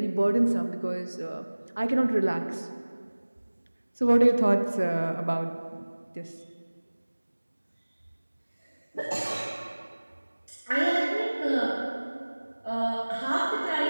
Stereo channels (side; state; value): both; inverted; correlation -1.00